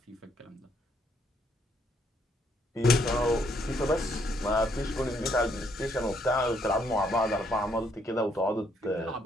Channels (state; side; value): normal; both; correlation 0.71